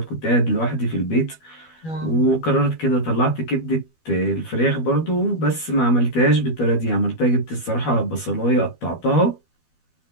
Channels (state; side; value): late; right; 12 ms